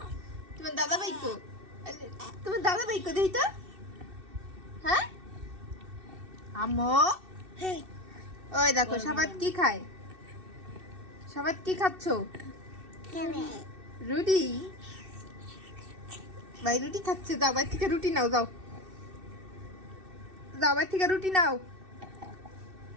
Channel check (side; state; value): left; late; 2.6 ms